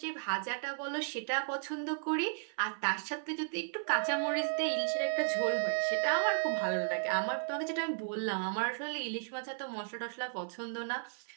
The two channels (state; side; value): silent; left; 55 dB below the other